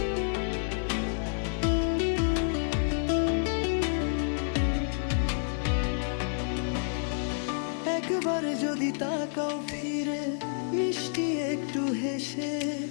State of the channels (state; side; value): silent; right; digital silence